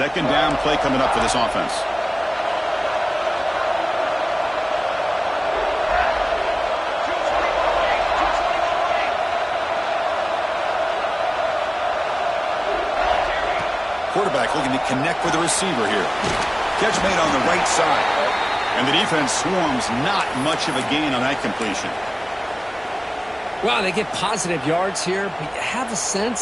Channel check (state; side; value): identical; both; correlation 1.00